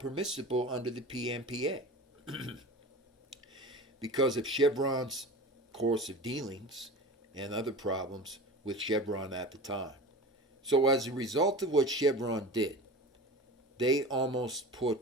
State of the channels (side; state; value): both; normal; correlation 0.33